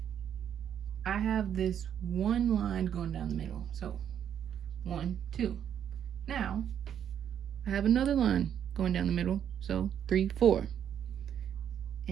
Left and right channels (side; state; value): left; quieter; 9.2 dB